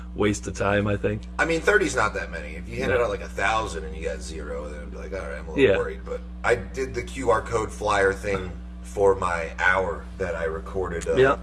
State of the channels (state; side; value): identical; both; correlation 1.00